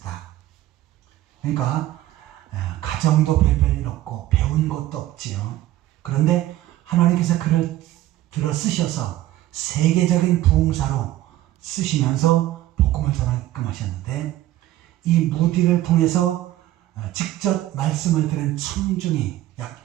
그러니까 가정도 별별 없고 배운 것도 없지요. 그런데 하나님께서 그를 들어 쓰셔서 세계적인 부흥사로 쓰시면서 복음을 전하게끔 하셨는데 이 무디를 통해서 직접 말씀을 들은 청중이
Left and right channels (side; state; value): left; quieter; 14.7 dB